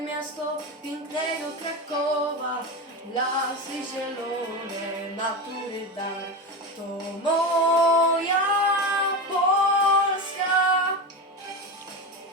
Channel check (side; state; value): both; normal; correlation 0.20